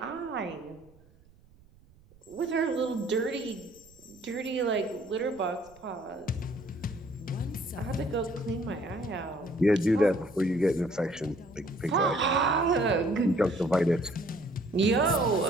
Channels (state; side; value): noise; right; rumble, 27 dB below the sound